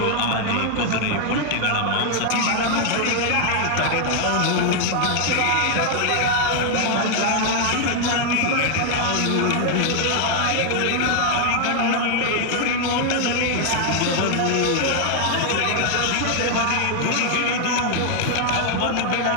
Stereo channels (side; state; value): both; different; correlation 0.00